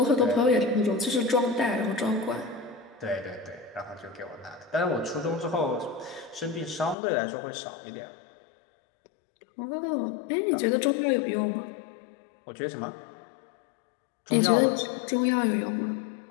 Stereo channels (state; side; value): drops out; right; at 7.0 s